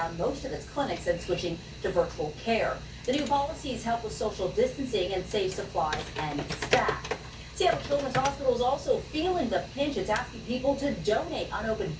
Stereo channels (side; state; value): both; identical; correlation 1.00